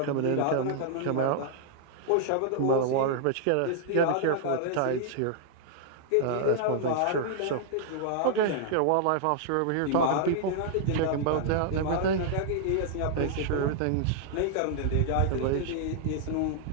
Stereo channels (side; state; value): both; different; correlation -0.01